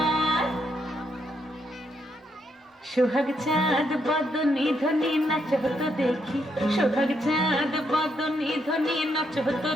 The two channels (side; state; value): both; normal; correlation 0.77